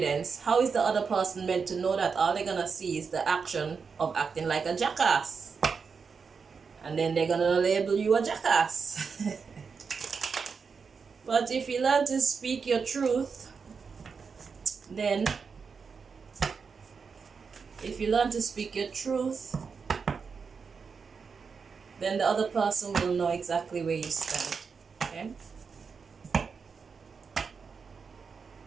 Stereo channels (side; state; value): left; quieter; 5.5 dB